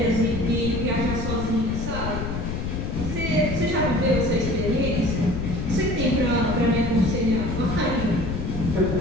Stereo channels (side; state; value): left; noise; rumble, 4 dB below the sound